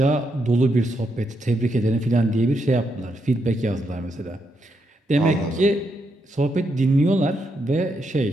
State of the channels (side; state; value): both; normal; correlation 0.80